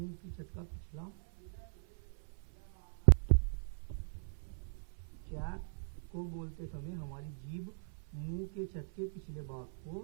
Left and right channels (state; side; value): silent; left; 52 dB below the other